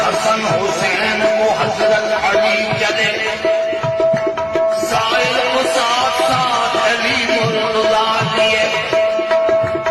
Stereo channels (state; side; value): identical; both; correlation 1.00